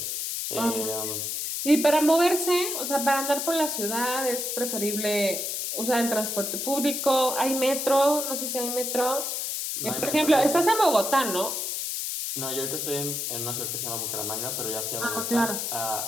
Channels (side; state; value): left; noise; hiss, 2 dB below the sound